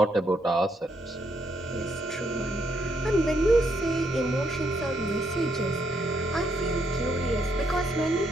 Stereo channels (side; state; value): both; normal; correlation 0.75